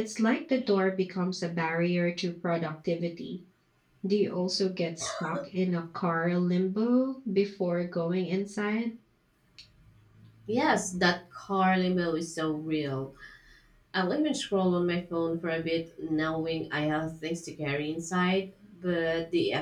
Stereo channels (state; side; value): identical; both; correlation 1.00